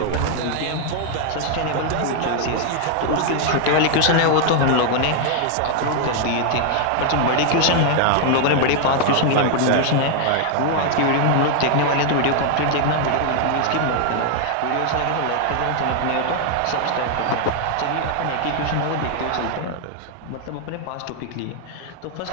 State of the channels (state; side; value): different; both; correlation 0.00